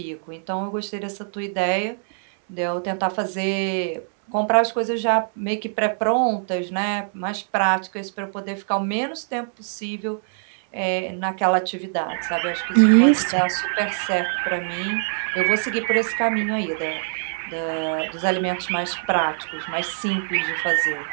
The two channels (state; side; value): silent; left; 63 dB below the other